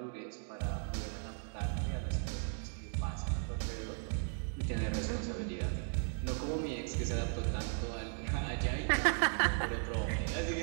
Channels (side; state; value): left; silent; 53 dB below the other